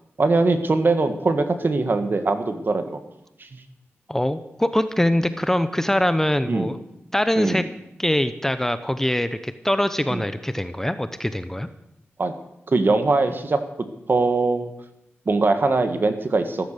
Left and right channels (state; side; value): normal; both; correlation 0.93